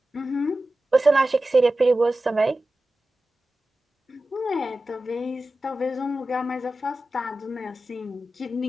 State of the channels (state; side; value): normal; both; correlation 0.94